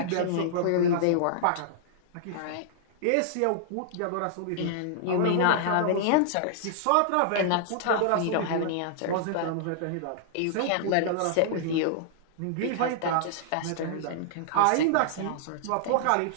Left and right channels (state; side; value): different; both; correlation -0.01